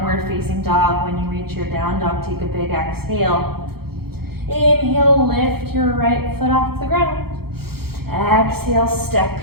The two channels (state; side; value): late; left; 0.95 ms